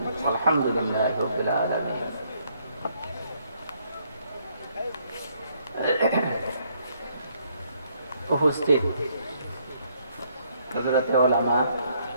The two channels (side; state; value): both; inverted; correlation -0.70